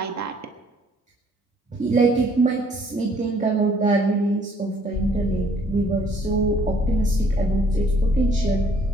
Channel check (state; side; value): normal; both; correlation 0.62